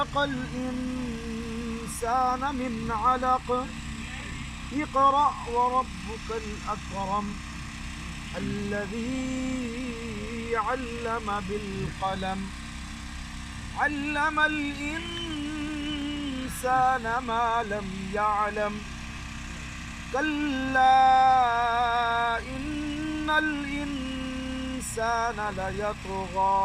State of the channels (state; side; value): identical; both; correlation 1.00